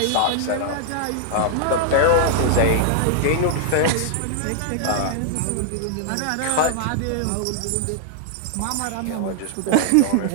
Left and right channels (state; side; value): different; both; correlation -0.01